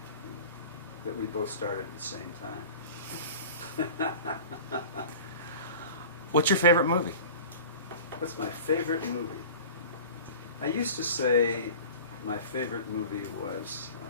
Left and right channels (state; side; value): inverted; both; correlation -0.39